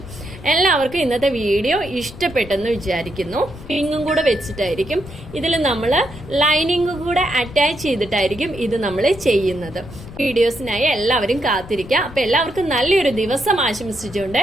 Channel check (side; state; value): left; noise; rumble, 15 dB below the sound